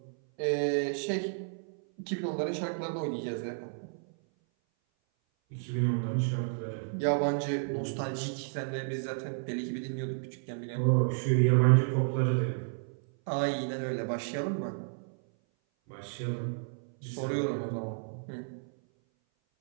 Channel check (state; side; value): silent; left; 57 dB below the other